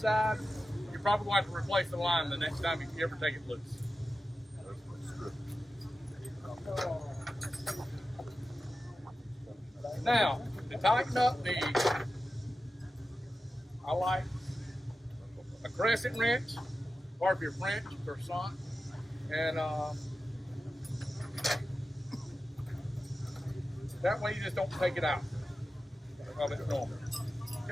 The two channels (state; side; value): normal; both; correlation 0.93